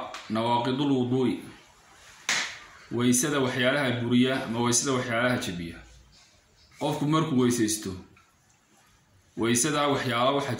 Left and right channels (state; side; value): identical; both; correlation 1.00